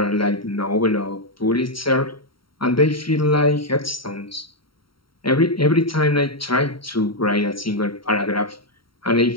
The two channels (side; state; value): right; late; 0.74 ms